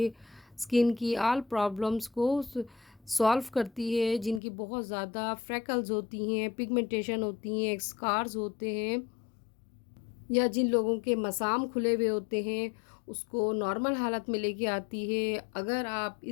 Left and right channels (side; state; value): right; drops out; at 4.4 s